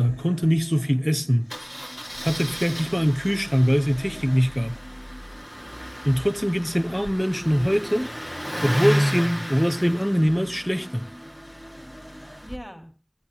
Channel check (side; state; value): both; identical; correlation 1.00